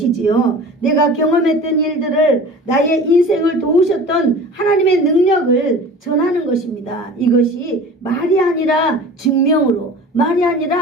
내가 경험했던 일들을, 나의 인생을 도우셨던 하나님의 능력을 전하는 것입니다. 이것이 말이 아니라 증명으로, 말이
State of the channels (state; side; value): normal; both; correlation 0.39